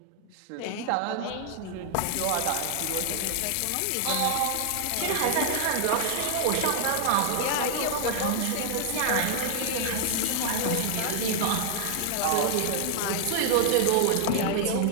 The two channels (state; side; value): different; both; correlation 0.00